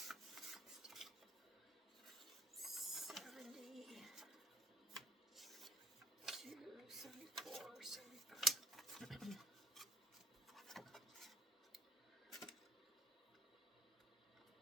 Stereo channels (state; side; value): normal; both; correlation 0.50